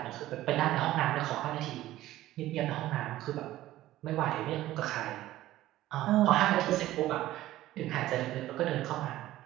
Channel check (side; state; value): left; quieter; 15.1 dB